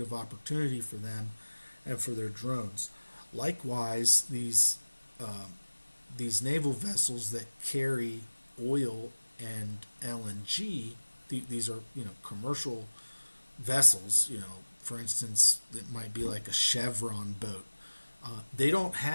of opportunity for them and for their drones. Likewise, these naval vessels that carry oil and LNG, these are commercial vessels. For instance, it might be like a Chevron boat. They don't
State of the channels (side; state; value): both; inverted; correlation -1.00